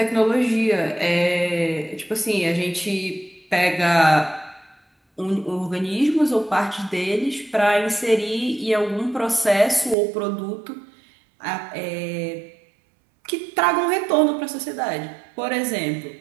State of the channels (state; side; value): drops out; left; at 10.0 s